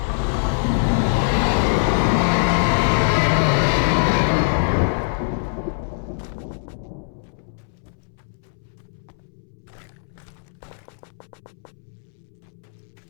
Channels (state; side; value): silent; right; 64 dB below the other